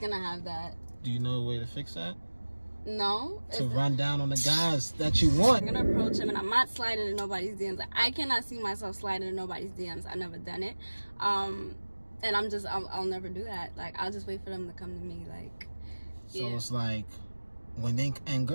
gonna have that. Do you know a way to fix that? No. To run down on the guys that you want. I'm gonna approach him, and I'm not sliding in nobody's DMs. I cannot see myself sliding in nobody's DMs. I've never done it, and I'll never do that. Like, I'll just wait for them to come to me. Like, so yeah. It's like when and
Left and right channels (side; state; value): both; inverted; correlation -1.00